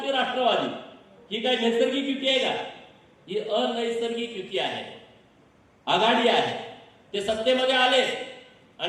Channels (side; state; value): both; identical; correlation 1.00